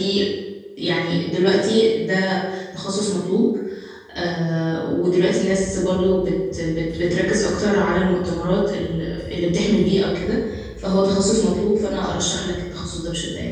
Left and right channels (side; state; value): both; identical; correlation 1.00